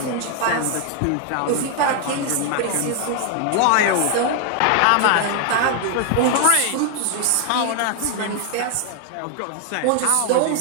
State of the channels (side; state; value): both; different; correlation 0.00